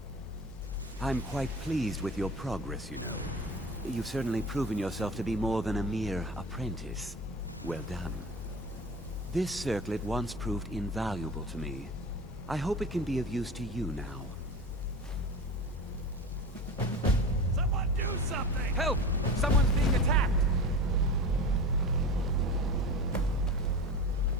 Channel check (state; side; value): normal; both; correlation 0.33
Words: I'm quite pleased with your progress, you know. You've certainly proven yourself to be more than a mere apprentice. Well done. This circlet once proved invaluable to me. I hope it can be of use to you now. Someone do something! Help! Someone's being attacked!